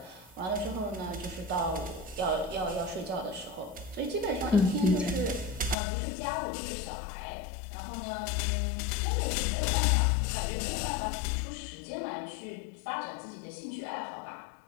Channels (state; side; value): drops out; right; at 5.8 s